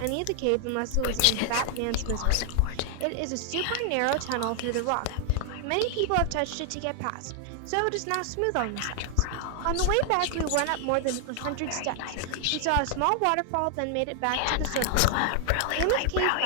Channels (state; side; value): different; both; correlation 0.00